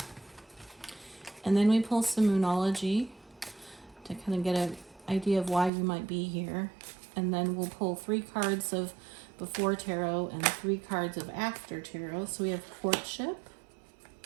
And then we pull some Moonology to kind of get an idea of why you might be here. And then we'll pull 3 cards of Before Tarot and 3 cards of After Tarot. So we have Courtship,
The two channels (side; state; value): left; drops out; at 5.7 s